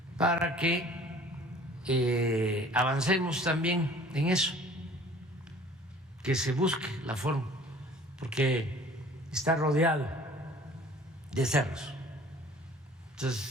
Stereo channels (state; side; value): normal; both; correlation 0.50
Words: para que avancemos también en eso, que se busque la forma, porque está rodeado de cerros.